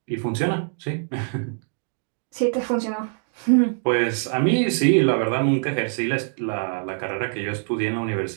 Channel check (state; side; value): silent; left; digital silence